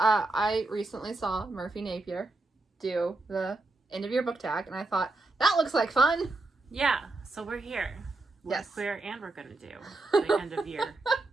recently saw Murphy Napier do the end of year book tag, and I thought, that looks like fun. Yeah, so we're here. We're Yes. queer, and we're going to do the end of year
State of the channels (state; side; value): quieter; left; 3.1 dB